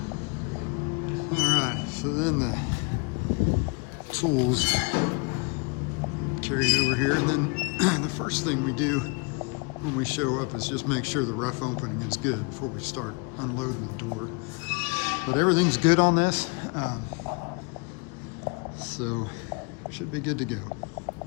All right, so then the tools carried over here, and then the first thing we do when we show up is just make sure the rough opening is good before we start unloading the door. But everything's good on this, so we should be good to go.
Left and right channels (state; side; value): quieter; right; 32.7 dB